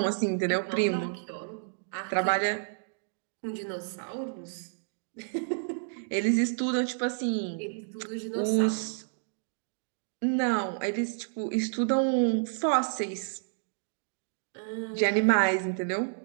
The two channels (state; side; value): silent; left; digital silence